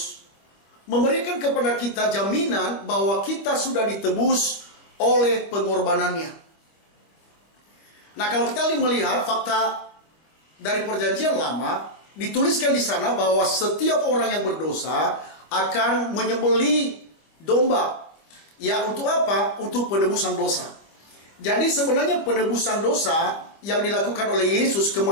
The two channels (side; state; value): right; late; 25 ms